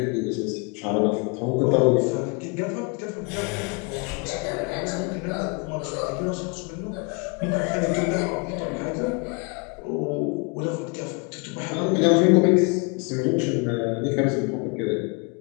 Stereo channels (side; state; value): right; quieter; 31.3 dB